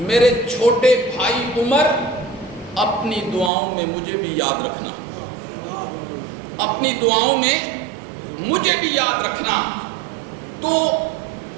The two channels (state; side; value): drops out; left; at 3.5 s